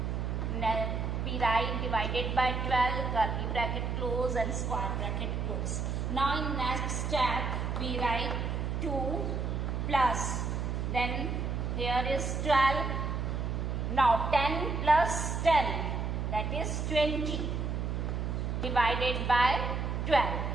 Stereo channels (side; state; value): right; noise; hum, 1 dB below the sound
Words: Then we write divided by 12, curly bracket close and square bracket close. Now in next step, we write 2 plus. Then here is 12. Now 10 plus 10, that is 20, divided by 12.